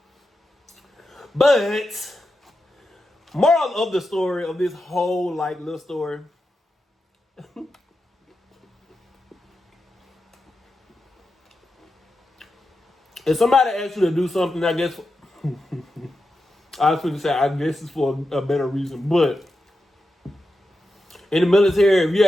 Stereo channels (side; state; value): both; normal; correlation 0.89